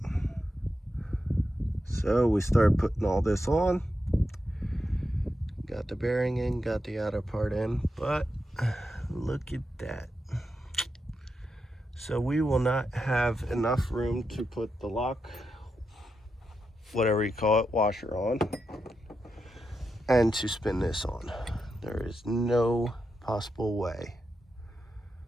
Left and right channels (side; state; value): both; normal; correlation 0.86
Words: So we start putting all this on. Got the bearing in, got the outer part in, but look at that. So we will not have enough room to put the lock, whatever you call it, washer on, and to spin this on. There is no possible way.